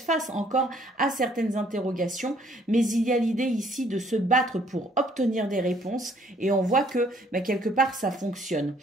face encore à certaines interrogations, mais il y a l'idée ici de se battre pour obtenir des réponses et on voit que quelque part ça fonctionne.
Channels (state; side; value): normal; both; correlation 0.63